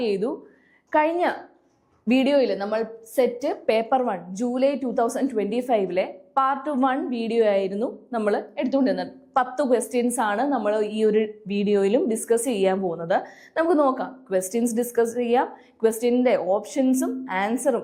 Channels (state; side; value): identical; both; correlation 1.00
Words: ചെയ്തു. കഴിഞ്ഞ വീഡിയോയിൽ നമ്മൾ set paper 1 July 2025 part 1 video ആയിരുന്നു നമ്മൾ എടുത്തുകൊണ്ടിരുന്നത്. 10 ക്വസ്റ്റ്യൻസ് ആണ് നമ്മൾ ഈ ഒരു വീഡിയോയിലും ഡിസ്കസ് ചെയ്യാൻ പോകുന്നത്. നമുക്ക് നോക്കാം, ക്വസ്റ്റ്യൻസ് ഡിസ്കസ് ചെയ്യാം. ക്വസ്റ്റ്യൻ്റെ ഓപ്ഷൻസും